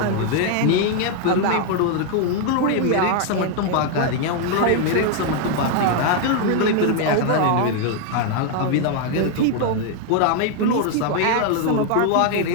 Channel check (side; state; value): both; different; correlation 0.00